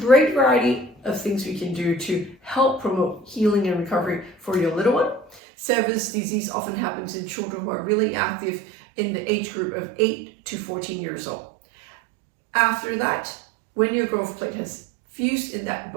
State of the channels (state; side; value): drops out; left; at 5.4 s